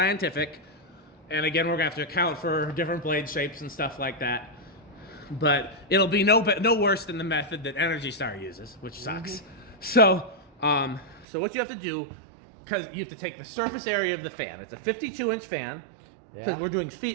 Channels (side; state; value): left; drops out; at 11.2 s